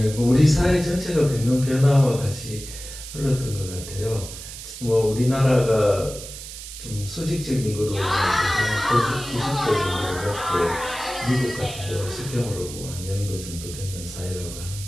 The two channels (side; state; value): right; noise; hiss, 12 dB below the sound